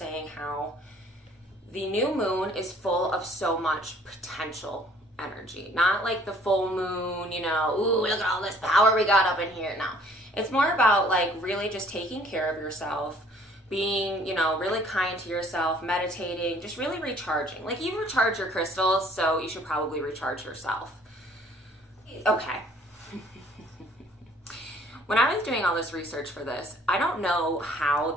how the new moon is full of so much potential energy. Not like the full moon, ooh, look at all this power we got up in here. No, it's more about like really just taking care of yourself, being, really kind to yourself, meditating, just really recharging. Like, you recharge your crystals, so you should probably recharge yourself. Okay. When I was doing all this research for this, I don't know how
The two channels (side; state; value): both; normal; correlation 0.57